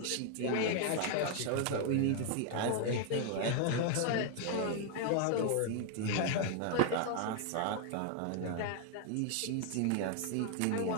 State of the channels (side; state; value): both; different; correlation 0.00